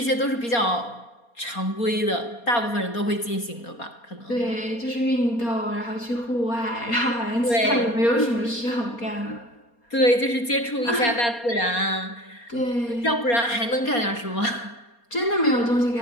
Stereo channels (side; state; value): right; late; 4.2 ms